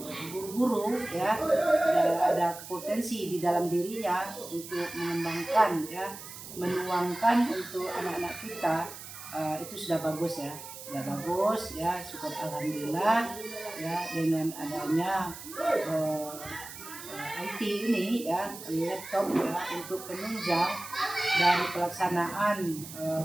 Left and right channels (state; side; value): noise; right; hiss, 13 dB below the sound